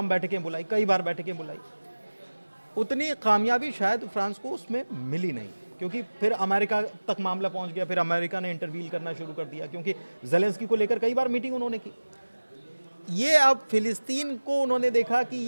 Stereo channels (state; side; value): inverted; both; correlation -1.00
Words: बैठकें बुलाई, कई बार बैठकें बुलाई, उतनी कामयाबी शायद फ्रांस को उसमें मिली नहीं, क्योंकि फिर अमेरिका तक मामला पहुंच गया, फिर अमेरिका ने इंटरवील करना शुरू कर दिया, क्योंकि ज़ेलेंस्की को लेकर कई बार मीटिंग उन्होंने की। ये अब फिलिस्तीन को उन्होंने देखा कि